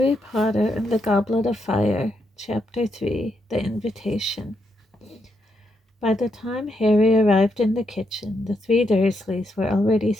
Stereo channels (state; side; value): normal; both; correlation 0.80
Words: Potter and the Goblet of Fire, Chapter 3, The Invitation. By the time Harry arrived in the kitchen, the three Dursleys were already